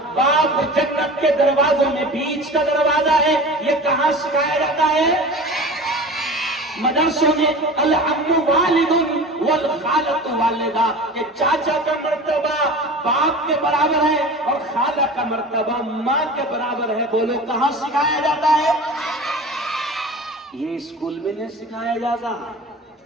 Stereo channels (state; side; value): normal; both; correlation 0.36